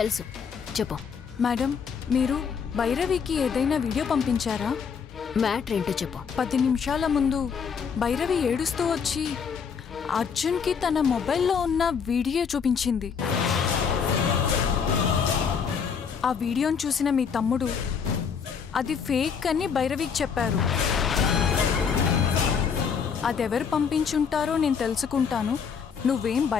చెప్పు. మేడం, మీరు భైరవికి ఏదైనా వీడియో పంపించారా? మ్యాటర్ ఏంటో చెప్పు. 10 నిమిషాల ముందు భైరవి ఏడుస్తూ వచ్చి అర్జున్కి తన మొబైల్లో ఉన్న వీడియో చూపించింది. ఆ వీడియోను చూసిన మీ తమ్ముడు అది ఫేక్ అని భైరవికి చెప్పారు. అదెవరు పంపించుంటారో నేను తెలుసుకుంటాను, నువ్వేం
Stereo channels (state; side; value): quieter; right; 6.4 dB